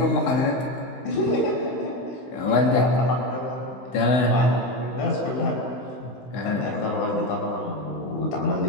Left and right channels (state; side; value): late; right; 16 ms